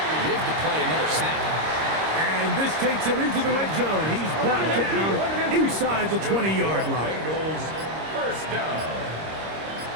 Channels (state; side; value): late; left; 26 ms